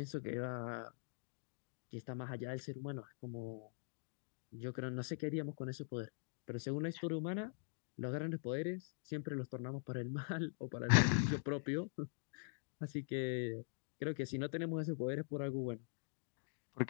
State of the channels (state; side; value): silent; right; digital silence